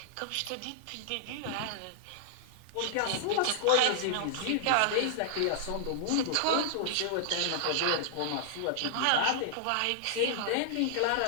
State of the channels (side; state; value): both; different; correlation -0.01